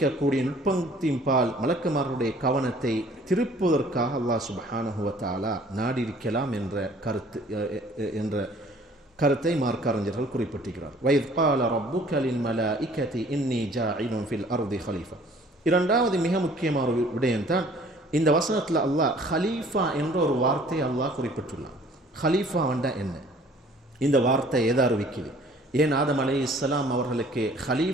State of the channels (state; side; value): normal; both; correlation 0.54